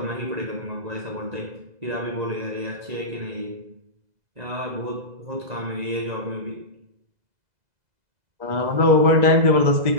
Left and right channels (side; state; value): left; late; 2.0 ms